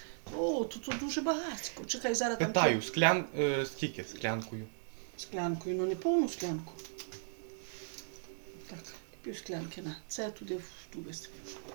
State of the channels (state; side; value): silent; left; 53 dB below the other